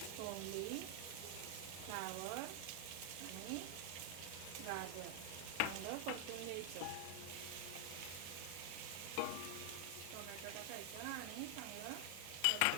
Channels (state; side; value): different; both; correlation 0.00